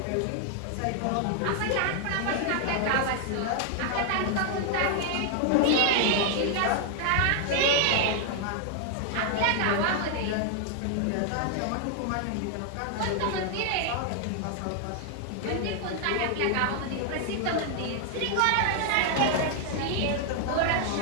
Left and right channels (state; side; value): different; both; correlation 0.00